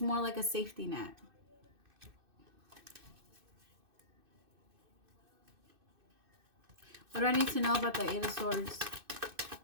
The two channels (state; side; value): late; left; 2.6 ms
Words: like a safety net. What do I need to know about the Eight of Swords?